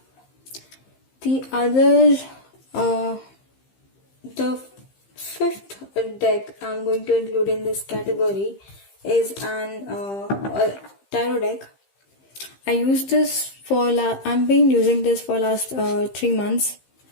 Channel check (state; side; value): late; right; 15 ms